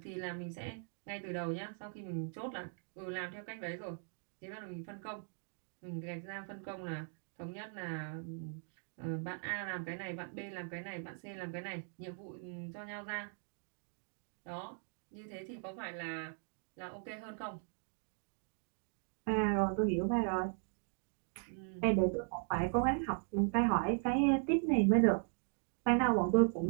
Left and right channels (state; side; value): silent; left; 52 dB below the other